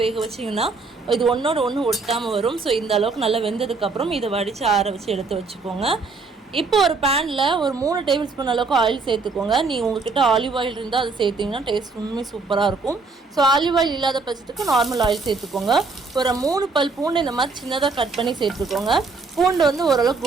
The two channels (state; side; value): quieter; left; 4.1 dB